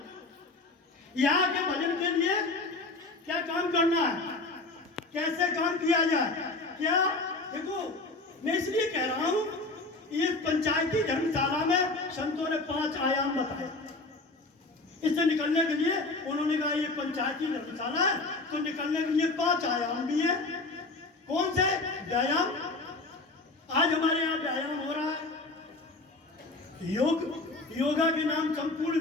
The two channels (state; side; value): quieter; right; 3.3 dB